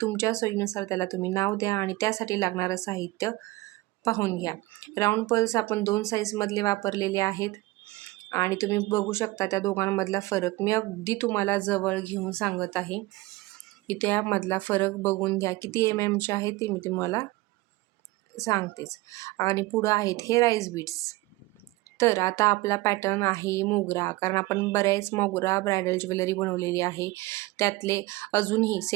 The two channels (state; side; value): quieter; left; 20.5 dB